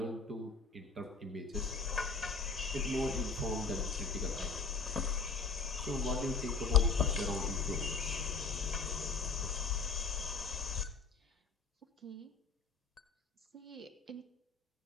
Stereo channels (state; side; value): quieter; right; 4.7 dB